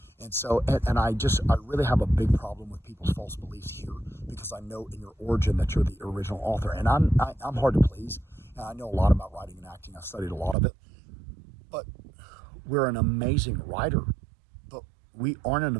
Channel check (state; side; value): drops out; left; at 10.6 s